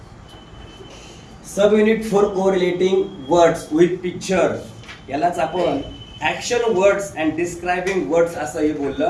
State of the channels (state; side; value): identical; both; correlation 1.00